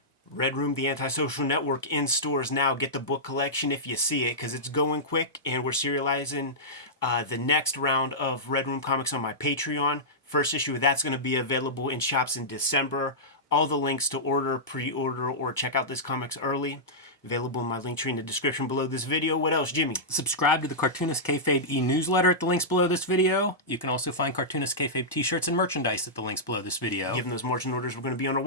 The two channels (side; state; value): both; normal; correlation -0.13